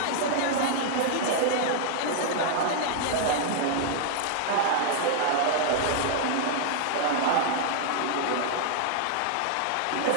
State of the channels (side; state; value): both; different; correlation -0.01